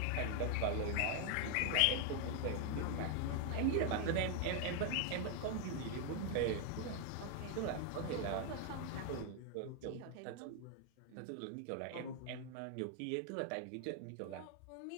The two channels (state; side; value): different; both; correlation 0.00